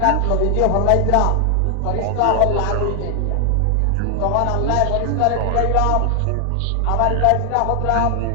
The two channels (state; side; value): different; both; correlation 0.00